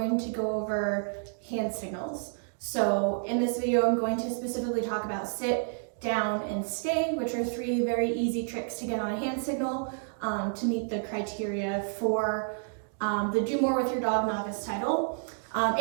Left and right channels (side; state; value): left; silent; digital silence